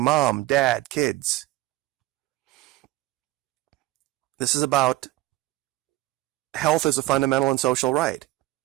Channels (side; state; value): left; quieter; 17.3 dB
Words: mom, dad, kids. This is about health as a fundamental and social right.